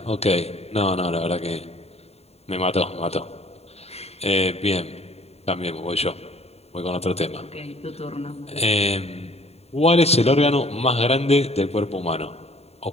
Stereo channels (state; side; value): late; right; 0.30 ms